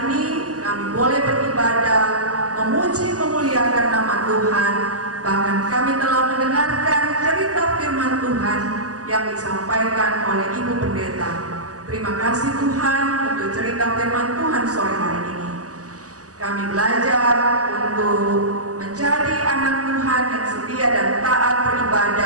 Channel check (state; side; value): late; left; 0.67 ms